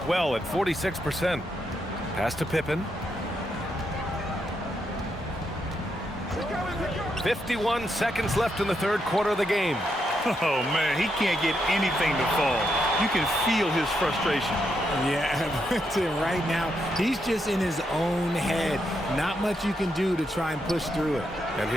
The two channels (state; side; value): normal; both; correlation 0.81